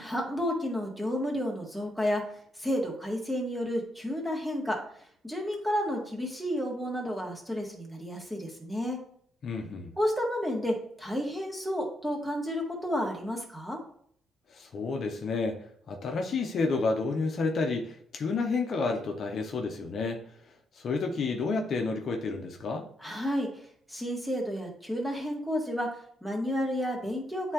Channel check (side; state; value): both; normal; correlation 0.79